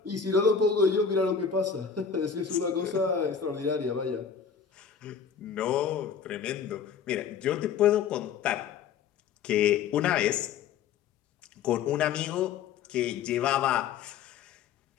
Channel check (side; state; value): right; quieter; 6.9 dB